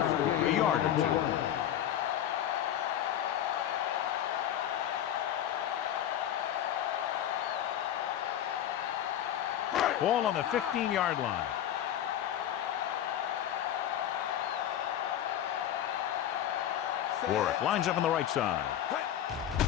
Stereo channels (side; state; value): right; quieter; 10.9 dB